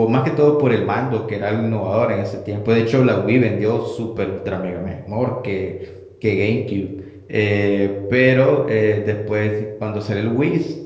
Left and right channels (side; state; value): both; identical; correlation 1.00